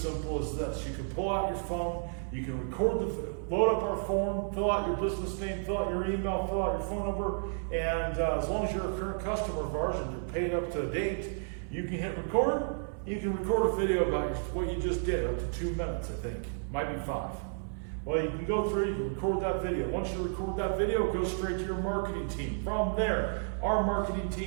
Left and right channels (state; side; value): silent; left; 57 dB below the other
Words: as this. You can pull out your phone, you can load up our form, fill out your business name, fill out your email, fill out your phone number, and as long as you're a current customer of ours and you're paid up to date, you can hit record. You can record a video about what you just did, up to 2 minutes, I think. Might be 5. Well, you can go through, you can record that video. Once you record that video, it goes straight to your marketing team. From there, our marketing